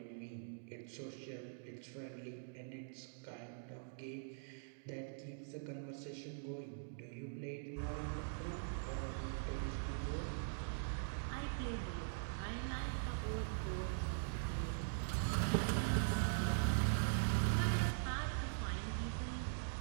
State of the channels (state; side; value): silent; left; digital silence